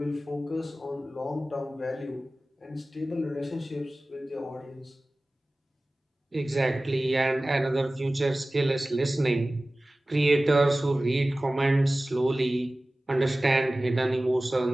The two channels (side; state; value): both; normal; correlation 0.97